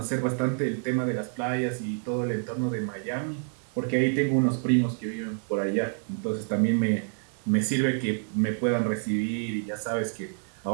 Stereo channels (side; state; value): left; silent; 55 dB below the other